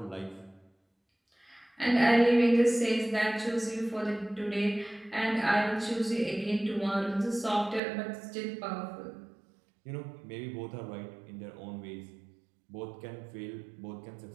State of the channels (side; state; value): left; drops out; at 7.8 s